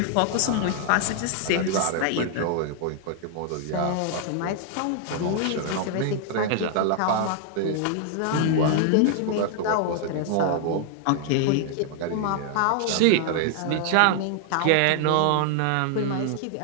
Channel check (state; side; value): different; both; correlation 0.00